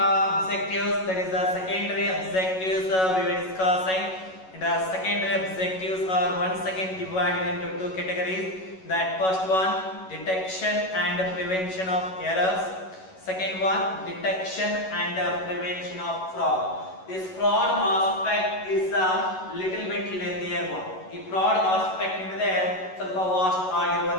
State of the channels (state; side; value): late; right; 11 ms